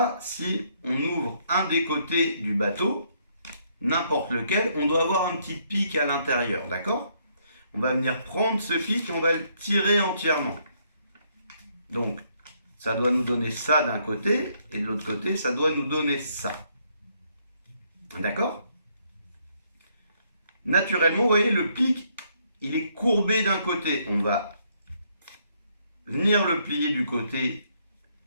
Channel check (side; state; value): both; inverted; correlation -0.71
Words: si on ouvre un des côtés du bateau, n'importe lequel, on doit avoir un petit pic à l'intérieur, d'accord? On va venir prendre ce pic et on va le tirer entièrement. Donc, ça doit nous donner ça d'un côté, et de l'autre côté, ça doit nous donner ça. D'accord? Naturellement, vous voyez, le pic, il est courbé d'un côté. On va venir le plier du côté